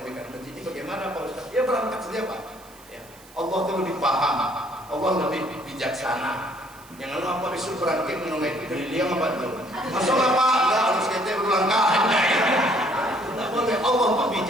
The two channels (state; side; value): noise; right; hiss, 24 dB below the sound